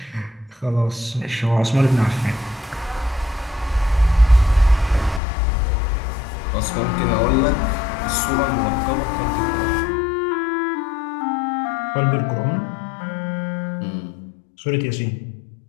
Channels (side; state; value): right; drops out; at 5.2 s